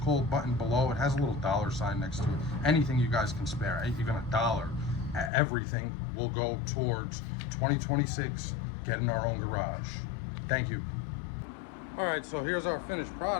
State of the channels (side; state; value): right; drops out; at 5.3 s